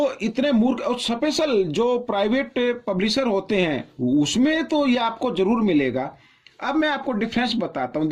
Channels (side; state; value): both; identical; correlation 1.00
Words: इतने मूर्ख, और स्पेशल जो प्राइवेट पब्लिशर होते हैं उसमें तो ये आपको जरूर मिलेगा। अब मैं आपको डिफरेंस बताता हूं।